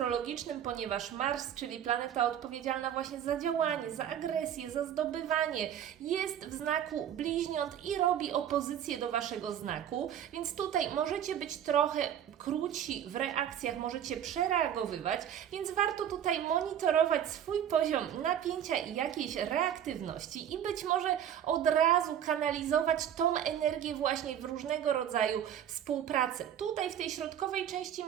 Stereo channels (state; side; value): quieter; left; 9.9 dB